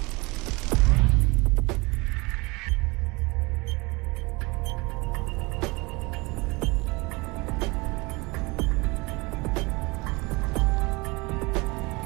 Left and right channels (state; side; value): quieter; left; 25.6 dB